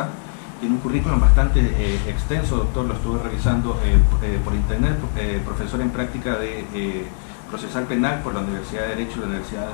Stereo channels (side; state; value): right; silent; digital silence